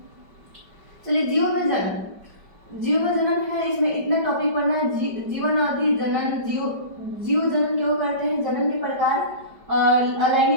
चलिए जीव में जन्म है, इसमें इतना टॉपिक पढ़ना है। जीवन अवधि जनन, जीव जनन क्यों करते हैं, जनन के प्रकार,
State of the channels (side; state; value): left; late; 5.1 ms